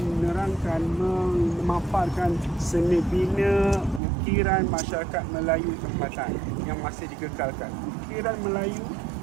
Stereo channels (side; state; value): left; drops out; at 4.0 s